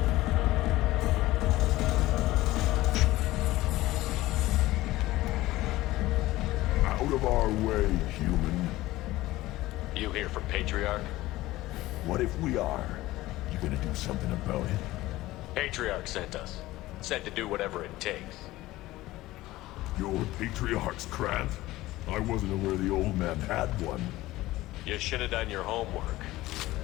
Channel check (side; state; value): right; quieter; 17.4 dB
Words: Out of our way, human. You here from Patriarch? What if we are? You gonna do something about it? Patriarch sent us. Said to do whatever it takes. You're Patriarch's Krant? I wasn't aware the old man had one. You should have done your homework.